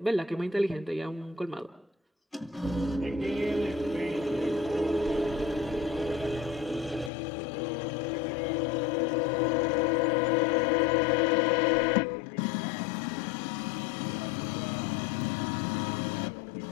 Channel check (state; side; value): drops out; right; at 7.1 s